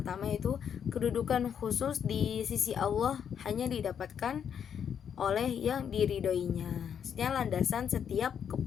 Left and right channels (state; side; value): quieter; right; 8.1 dB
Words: itu kedudukan khusus di sisi Allah hanya didapatkan oleh yang diridhoinya, maksudnya landasan setiap